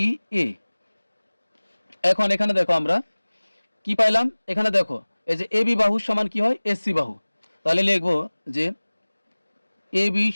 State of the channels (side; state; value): both; inverted; correlation -1.00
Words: এ। এখন এখানে দেখো আমরা কি পাইলাম, এখানে দেখো এই যে এ বি বাহু সমান কি হয় এসি বাহু। তাহলে লিখবো যে এ বি